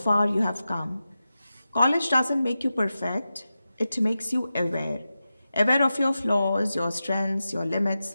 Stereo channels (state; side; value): inverted; both; correlation -0.92